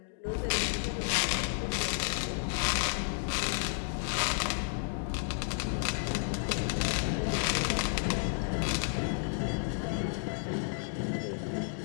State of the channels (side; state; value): right; silent; digital silence